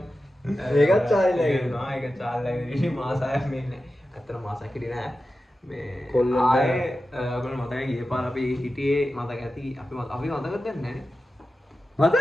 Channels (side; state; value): both; normal; correlation 0.93